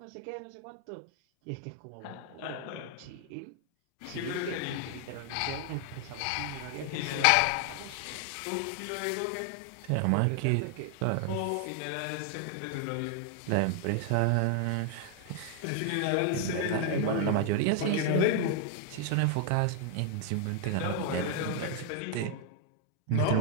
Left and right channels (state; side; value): different; both; correlation 0.00